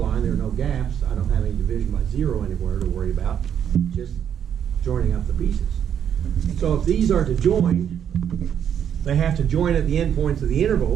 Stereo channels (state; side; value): quieter; left; 8.9 dB